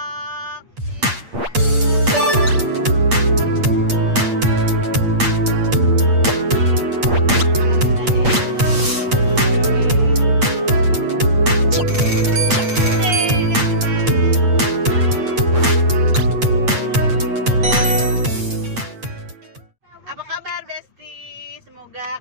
Apa kabar Besti? Semoga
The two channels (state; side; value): late; left; 8.5 ms